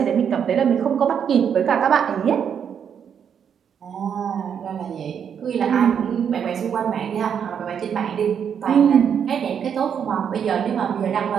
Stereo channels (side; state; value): left; quieter; 7.9 dB